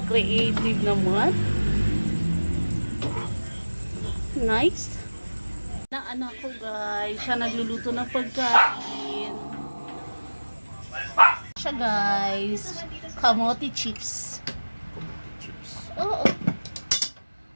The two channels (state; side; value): inverted; both; correlation -1.00